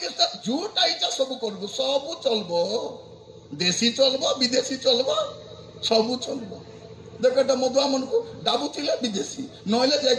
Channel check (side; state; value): both; identical; correlation 1.00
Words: ଯୋଉଟା ଇଚ୍ଛା ସବୁ କରିବୁ, ସବୁ ଚଲବ, ଦେଶୀ ଚଲବ, ବିଦେଶୀ ଚଲବ, ସବୁ ଚଲବ। ଦେଖ ଏଟା ମଦୁଆ ମାନଙ୍କୁ ଡାବୁଥିଲେ ବିଦେଶୀ, ନହେଲେ